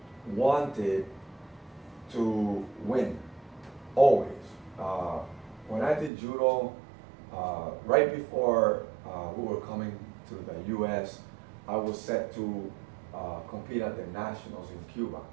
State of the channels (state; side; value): drops out; left; at 6.1 s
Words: wanted to win, always. When I did judo, right before we were coming to the U.S., I was set to compete at the nationals in Cuba,